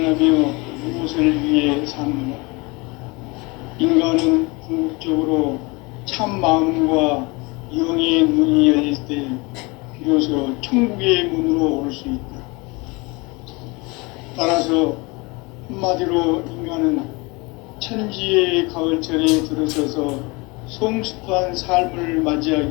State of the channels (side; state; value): right; quieter; 26.3 dB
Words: 무엇을 위해 사는가? 인간은 궁극적으로 참 마음과 영의 문이 열릴 때 비로소 천국의 문으로 올 수 있다. 따라서 한마디로 인간은 천지의 가을철에 들어서서 성숙한 삶을